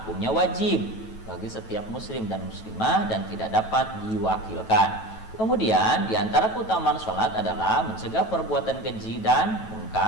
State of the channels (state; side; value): late; right; 9.2 ms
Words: wajib bagi setiap muslim dan muslimah dan tidak dapat diwakilkan. Kemudian diantara keutamaan sholat adalah mencegah perbuatan keji dan